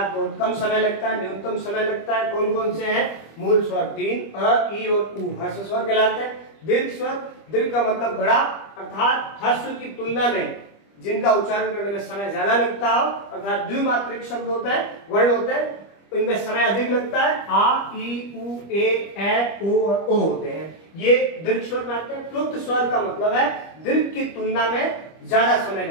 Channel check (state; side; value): late; right; 25 ms